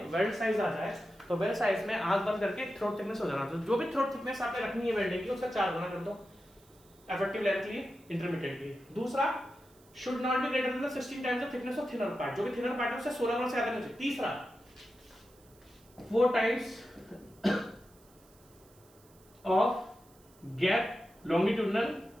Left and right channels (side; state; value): right; noise; hiss, 28 dB below the sound